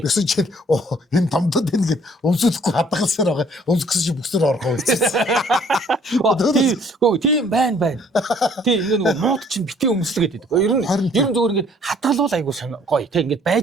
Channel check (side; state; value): both; normal; correlation 0.59